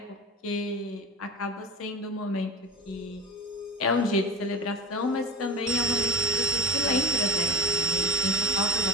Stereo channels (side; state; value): both; normal; correlation 0.37